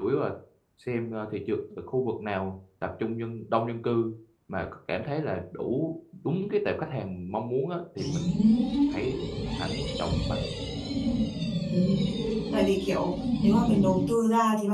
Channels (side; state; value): both; identical; correlation 1.00